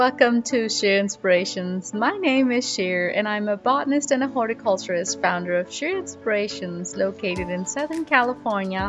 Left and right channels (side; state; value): both; identical; correlation 1.00